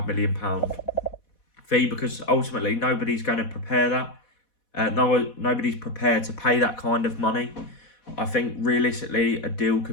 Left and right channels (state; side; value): late; right; 4.1 ms